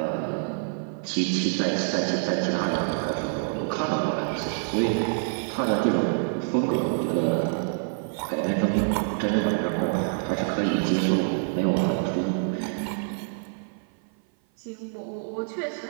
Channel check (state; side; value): silent; left; 56 dB below the other